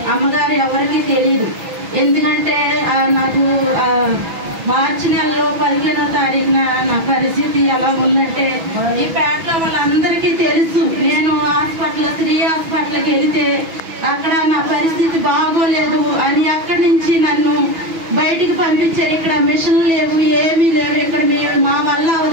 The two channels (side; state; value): left; late; 6.1 ms